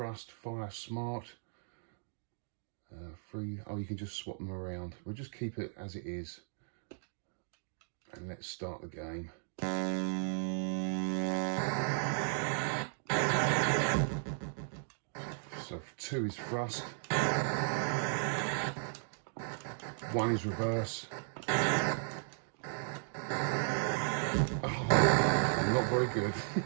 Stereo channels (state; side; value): silent; left; digital silence